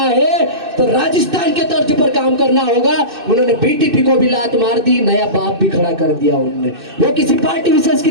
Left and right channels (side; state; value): left; late; 2.6 ms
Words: तो राजस्थान के तर्ज पर काम करना होगा। उन्होंने बीटीपी को भी लात मार दी, नया बाप भी खड़ा कर दिया उन्होंने। वो किसी पार्टी विशेष की